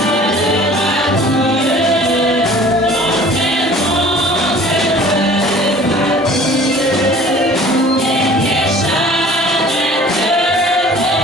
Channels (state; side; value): normal; both; correlation 0.48